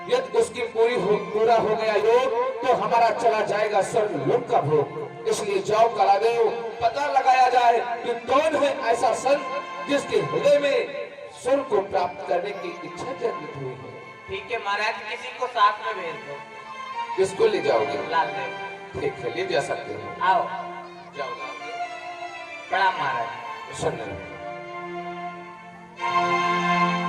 यदि उसकी पूरा हो गया योग तो हमारा चला जाएगा स्वर्ग लोक का भोग। इसलिए जाओ कालादेव, पता लगाया जाए कि कौन है ऐसा संत जिसके हृदय में स्वर्ग को प्राप्त करने की इच्छा जागृत हुई है। ठीक है महाराज, किसी को साथ में भेज दो। किसको ले जाओगे? लाल देव। ठीक है, ले जा सकते हो। आओ, जाओ लाल देव। प्रणाम महाराज। सुन रहे हो?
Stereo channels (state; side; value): identical; both; correlation 1.00